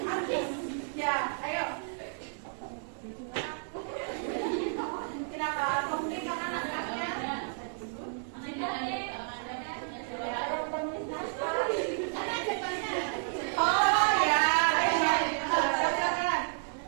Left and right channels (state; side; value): silent; left; digital silence